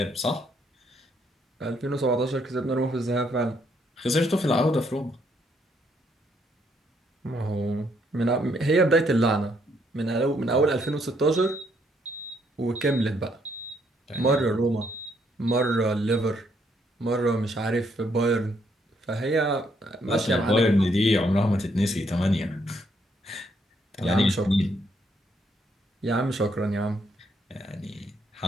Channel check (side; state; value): both; normal; correlation 0.72